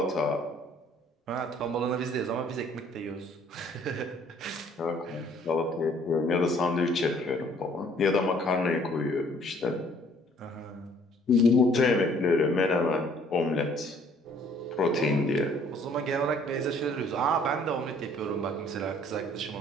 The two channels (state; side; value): normal; both; correlation 0.59